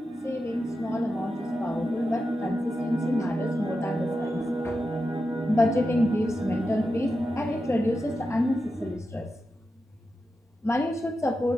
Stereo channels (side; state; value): both; normal; correlation 0.89